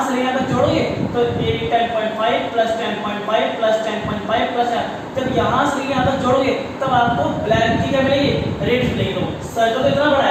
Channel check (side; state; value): both; identical; correlation 1.00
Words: से यहाँ तक जोड़ोगे, तो 10.5 प्लस 10.5 प्लस 10.5 प्लस, जब यहाँ से यहाँ तक जोड़ोगे तब आपको ब्लैक की क्या मिलेगी, रेडियस मिलेगी। तो सर्कल तो इतना बड़ा